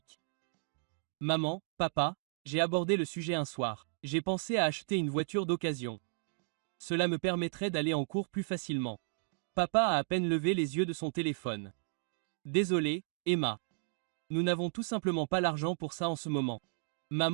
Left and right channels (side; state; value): left; silent; digital silence